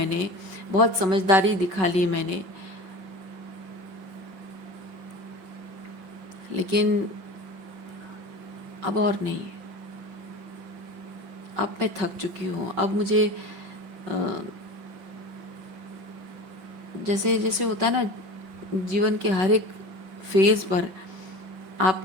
बहुत समझदारी दिखा ली मैंने, लेकिन अब और नहीं। अब मैं थक चुकी हूँ। अब मुझे जैसे जैसे होता है ना, जीवन के हर एक फेज़ पर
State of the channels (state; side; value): late; left; 5.3 ms